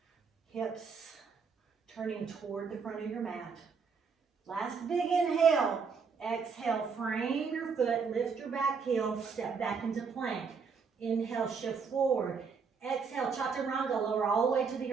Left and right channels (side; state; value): left; quieter; 5.6 dB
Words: Hips turning toward the front of your mat. Last big inhale. Exhale, frame your foot, lift your back heel, step back into plank. Inhale, shift forward. Exhale, chaturanga, lower all the way to